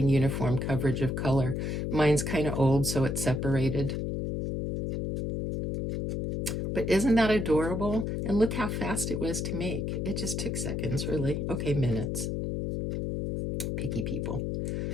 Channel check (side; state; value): left; noise; hum, 1 dB below the sound